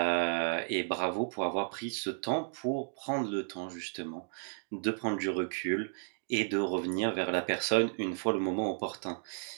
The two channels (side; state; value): left; silent; digital silence